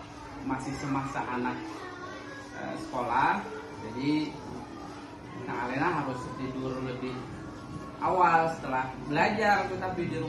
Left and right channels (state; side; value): identical; both; correlation 1.00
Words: masih semasa anak sekolah. Jadi Nak Alena harus tidur lebih awal setelah belajar, tetapi di